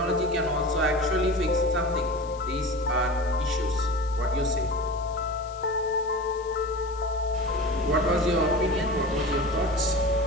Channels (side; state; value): left; noise; hiss, 23 dB below the sound